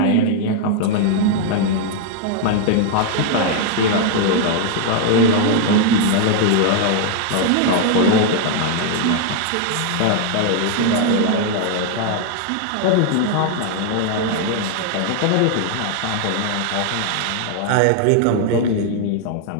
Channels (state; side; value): different; both; correlation 0.00